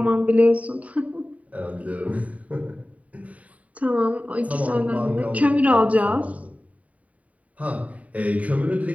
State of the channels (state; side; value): late; left; 0.069 ms